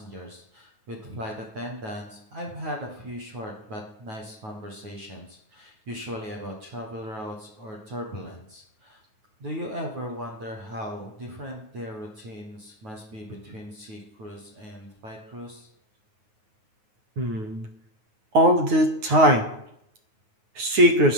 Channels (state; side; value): late; left; 9.4 ms